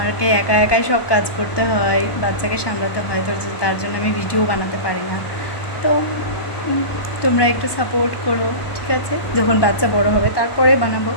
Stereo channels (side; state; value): right; late; 1.2 ms